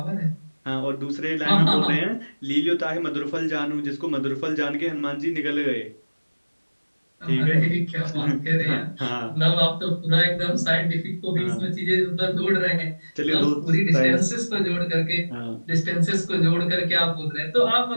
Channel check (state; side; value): inverted; both; correlation -1.00